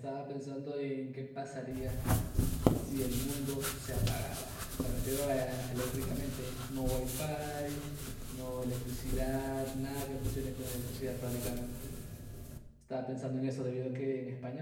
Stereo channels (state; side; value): identical; both; correlation 1.00